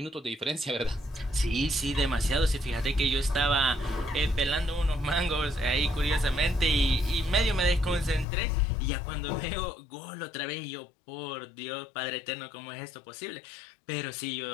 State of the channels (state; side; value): drops out; right; at 8.2 s